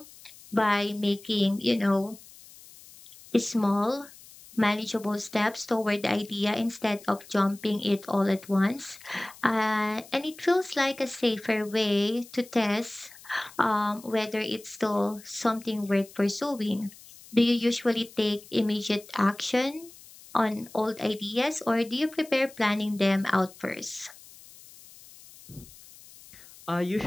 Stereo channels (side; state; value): left; noise; hiss, 21 dB below the sound